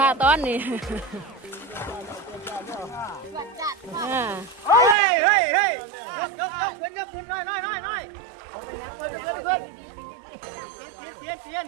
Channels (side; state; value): left; drops out; at 5.0 s